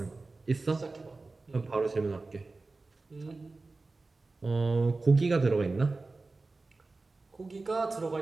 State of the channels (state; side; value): quieter; left; 3.5 dB